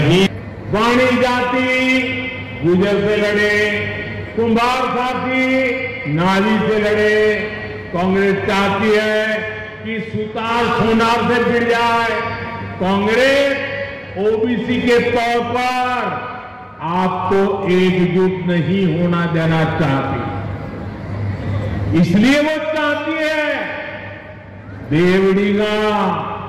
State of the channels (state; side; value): identical; both; correlation 1.00